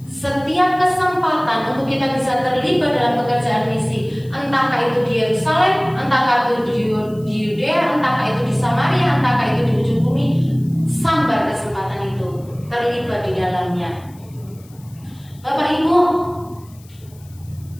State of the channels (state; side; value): noise; left; hiss, 27 dB below the sound